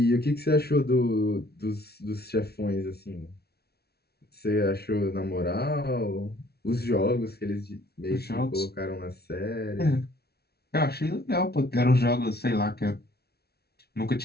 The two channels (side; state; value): right; late; 0.46 ms